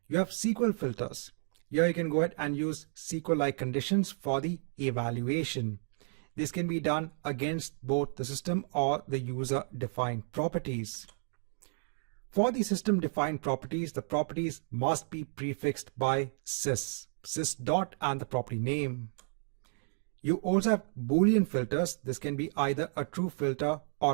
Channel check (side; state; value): left; silent; 56 dB below the other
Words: You have SQL filters. Here you can go ahead and use SQL-like conditions for the evaluation. This can be done against both the system or the user-defined properties. For the system-defined properties, the properties must be prefixed by sys dot and the property name. You also have Boolean filters. This can be either a true filter